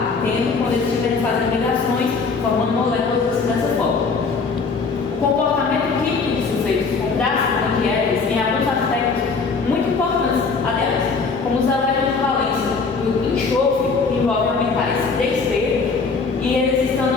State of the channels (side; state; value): right; quieter; 4.7 dB